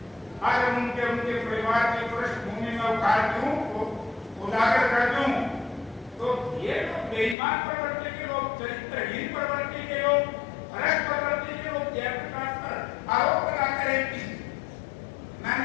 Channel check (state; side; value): drops out; right; at 7.4 s